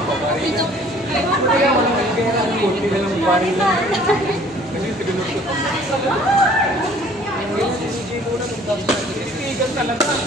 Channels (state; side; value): normal; both; correlation 0.54